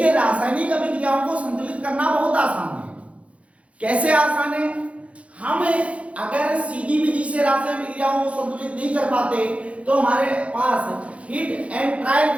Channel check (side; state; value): left; late; 0.063 ms